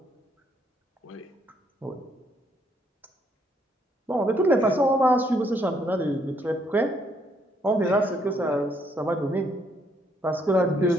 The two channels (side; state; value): both; normal; correlation 0.70